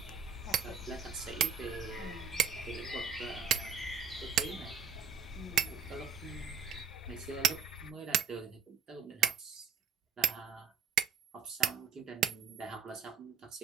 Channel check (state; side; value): quieter; left; 7.0 dB